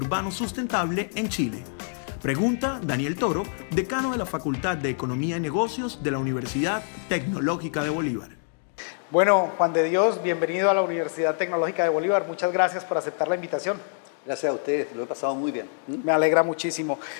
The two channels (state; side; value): silent; right; 61 dB below the other